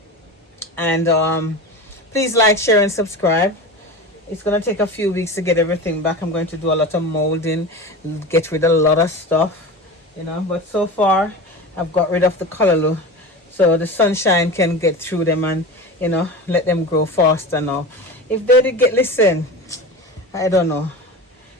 and please like, share, and subscribe. It's going to take a few weeks to get everything back. I'm going to do a lot of molding, get rid of a lot of stuff, but so far I've got rid of the callaloo so the sunshine can get through them and let them grow faster now. If they did listen, I don't know.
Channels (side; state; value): both; normal; correlation 0.29